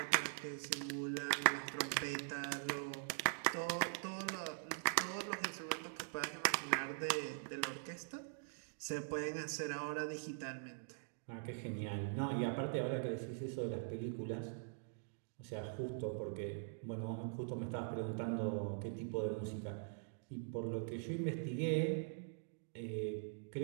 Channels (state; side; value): silent; left; digital silence